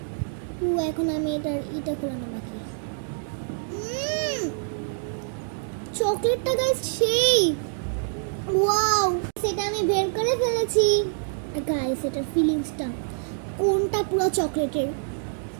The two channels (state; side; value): silent; left; digital silence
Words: এখন আমি এটা খোলানো বাকি। চকলেটটা গাইস সেই ওয়াও, সেটা আমি বের করে ফেলেছি গাইস। এটার ফিলিংসটা কোনটা পুরো চকলেটের,